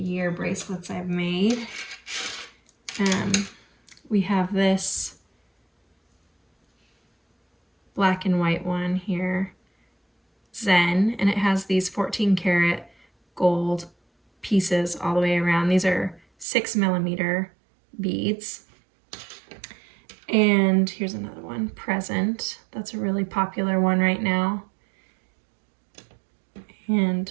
bracelets I've made. We have this black and white one here, Zen, and it has these 14 karat gold pieces all the way around. These are 6mm beads. And here's another one, Present. That's a really popular one right now. And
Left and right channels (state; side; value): drops out; left; at 16.4 s